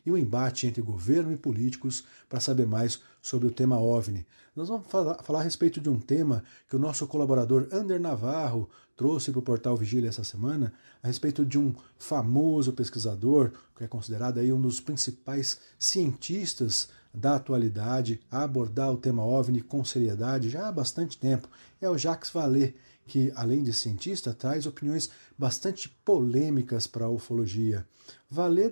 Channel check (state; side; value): inverted; both; correlation -1.00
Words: e o embate entre governo e políticos para saber mais sobre o tema OVNI. Nós vamos falar a respeito de um tema que o nosso colaborador Ander Navarro trouxe para o portal Vigília essa semana, a respeito de um famoso pesquisador, que é considerado aí um dos principais cientistas da atualidade a abordar o tema OVNI com seriedade já há bastante tempo. É o Jacques Vallée, que, além de cientista, traz opiniões bastante polêmicas para a ufologia. Vallée